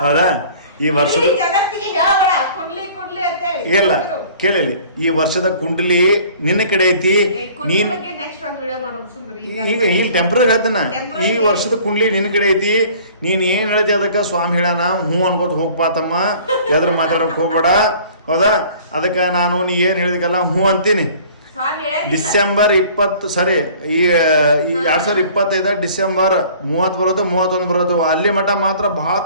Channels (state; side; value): inverted; both; correlation -0.50